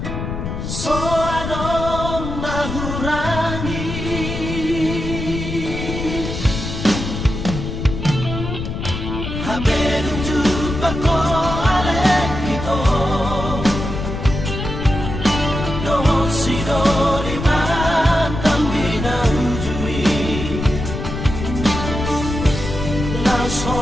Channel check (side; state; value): left; noise; rumble, 5 dB below the sound